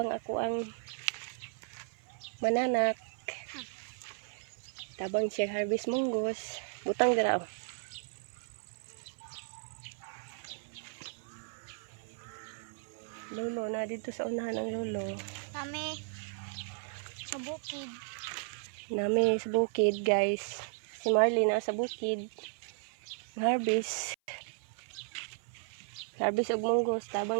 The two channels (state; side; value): silent; left; 54 dB below the other